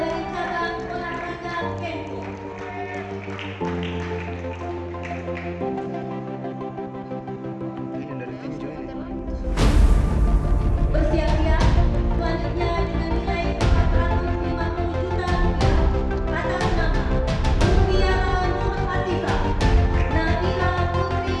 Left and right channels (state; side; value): identical; both; correlation 1.00